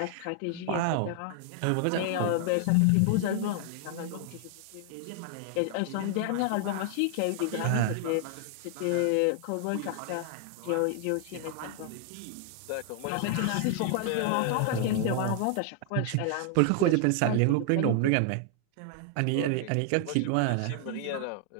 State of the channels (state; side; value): different; both; correlation 0.00